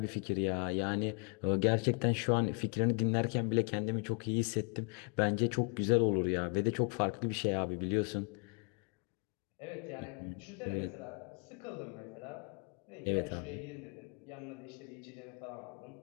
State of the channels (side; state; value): right; quieter; 35.6 dB